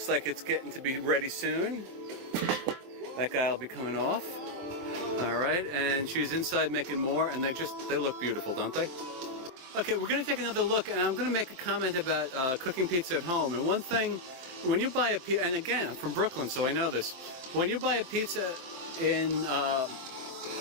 like it's getting to be ready soon. That guy will be coming off. All right, and she's inside making more, and they look beautiful, don't they? Okay, we're going to take another look, and I'm going to make a comment about cooking pizza at home. And one thing, when you buy a pizza, and again, I'm from Brooklyn, so I know this. When you buy a pizza in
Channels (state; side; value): late; left; 23 ms